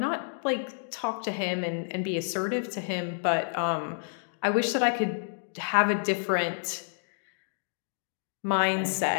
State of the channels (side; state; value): right; silent; digital silence